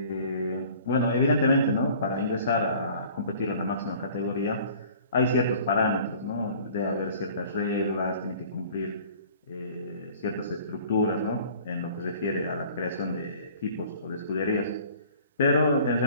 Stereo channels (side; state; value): both; inverted; correlation -0.50